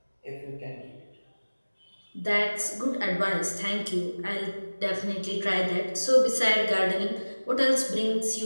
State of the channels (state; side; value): inverted; both; correlation -1.00